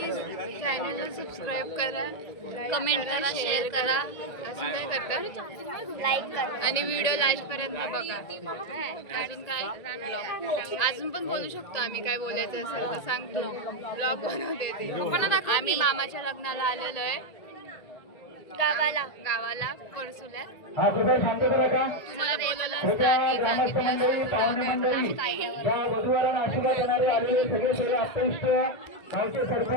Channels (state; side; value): late; right; 1.9 ms